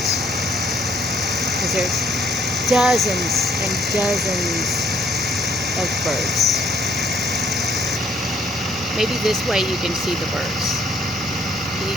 Because there's dozens and dozens of birds. Maybe this way you can see the birds. Can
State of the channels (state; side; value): normal; both; correlation 0.65